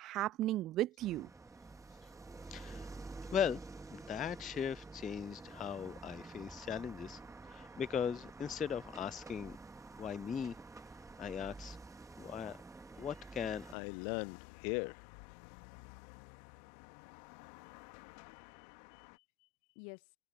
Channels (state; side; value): drops out; right; at 13.8 s